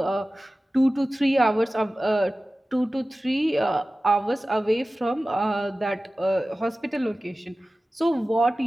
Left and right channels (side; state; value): both; normal; correlation 0.96